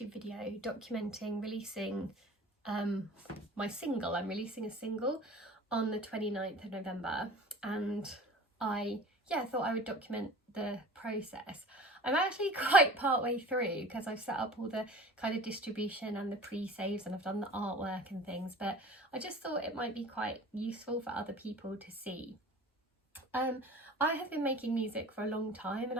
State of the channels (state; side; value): normal; both; correlation 0.41